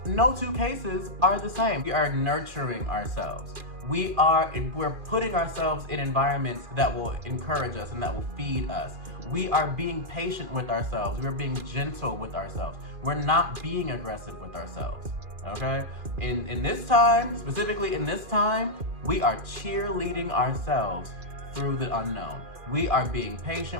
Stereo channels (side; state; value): left; late; 2.4 ms